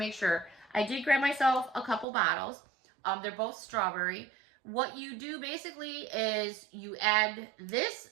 sure. I did grab myself a couple bottles. They're both strawberry. What you do basically is you add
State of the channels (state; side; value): drops out; left; at 2.1 s